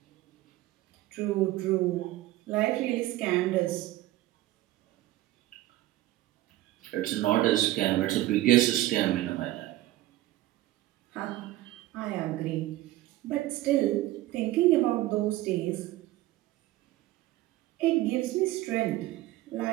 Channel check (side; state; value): left; quieter; 16.1 dB